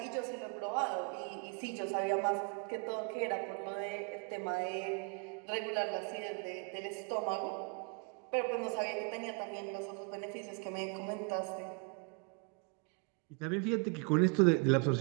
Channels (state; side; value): quieter; left; 35.6 dB